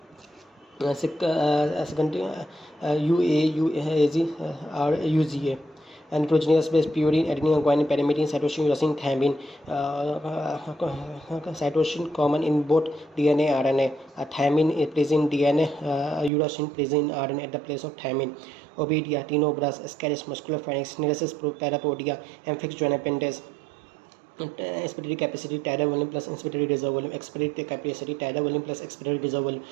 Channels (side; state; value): left; drops out; at 16.3 s